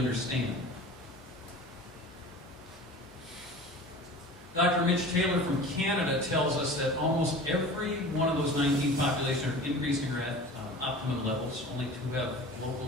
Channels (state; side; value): normal; both; correlation 0.39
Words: Dr. Mitch Taylor from Canada tells us that almost every one of those 19 populations are increasing or at optimum levels. Only 2 have local